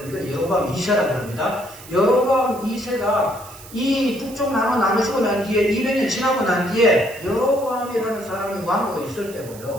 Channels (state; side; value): noise; right; hiss, 18 dB below the sound